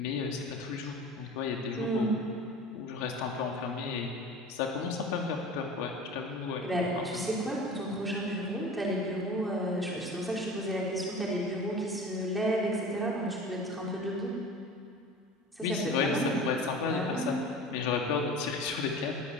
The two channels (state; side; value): normal; both; correlation 0.37